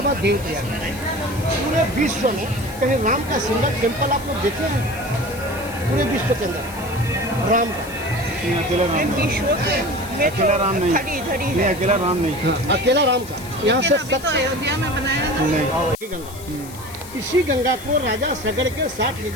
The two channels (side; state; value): left; noise; hiss, 17 dB below the sound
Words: देह किया। पूरे विश्व में कहीं राम का सिंगल टेम्पल आप लोग देखे हैं? पूरे विश्व के अंदर राम का अकेला राम, विश्व में अकेला राम नहीं, नहीं अकेला राम नहीं, हाँ, अकेला राम का। यहाँ से तो अयोध्या में बनाया ना। नहीं। गंगा, इसी गंगा को राजा सगड़ के